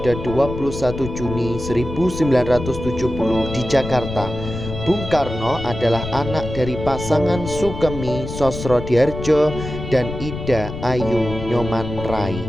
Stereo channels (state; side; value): noise; left; rumble, 8 dB below the sound